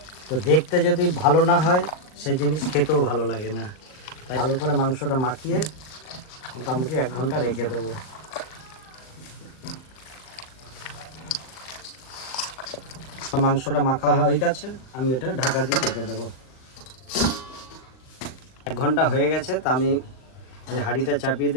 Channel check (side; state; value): right; late; 39 ms